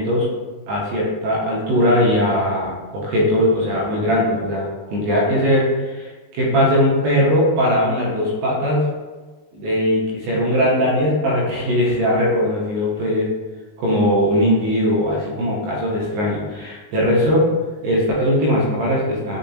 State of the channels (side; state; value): left; late; 19 ms